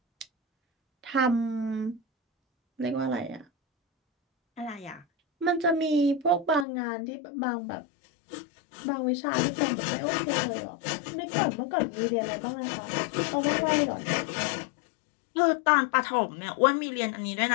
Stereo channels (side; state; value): right; drops out; at 6.7 s